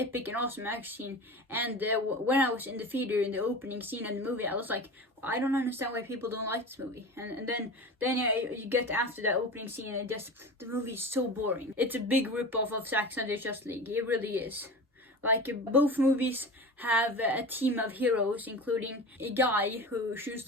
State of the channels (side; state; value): both; normal; correlation 0.31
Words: and awesome action scene. And when I was in the theater in the opening scene of the movie, I was like, I don't understand why people don't like this movie. And then you get after that opening scene, and the movie is so boring. It's a big rip-off of Zack Snyder's Justice League. It really is. Like, both movies have a team of heroes, including a guy who shoots